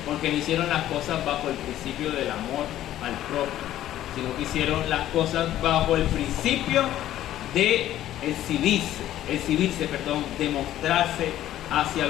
porque no hicieron las cosas bajo el principio del amor al propio, sino que hicieron las cosas bajo el principio de exhibirse, de mostrarse hacia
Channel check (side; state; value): right; quieter; 12.9 dB